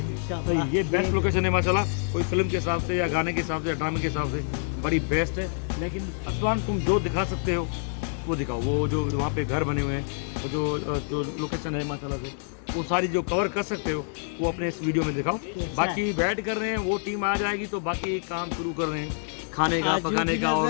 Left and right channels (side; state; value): right; silent; digital silence